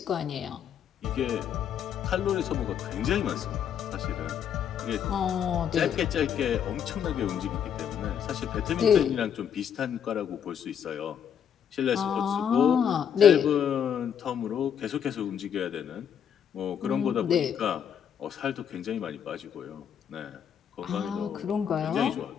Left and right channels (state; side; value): quieter; right; 8.5 dB